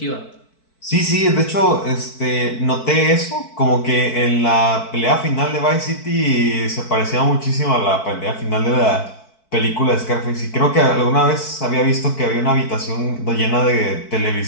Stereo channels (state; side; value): late; right; 4.6 ms